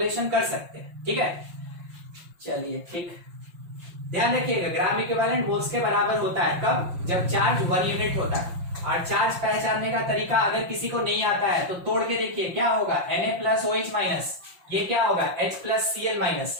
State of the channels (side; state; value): left; late; 5.7 ms